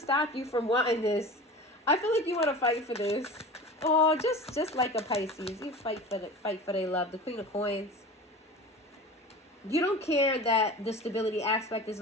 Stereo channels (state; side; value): normal; both; correlation 0.35